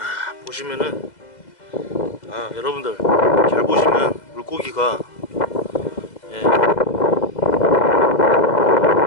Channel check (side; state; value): right; late; 2.0 ms